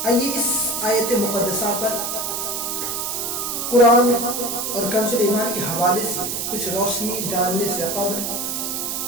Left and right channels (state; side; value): noise; right; hiss, 2 dB below the sound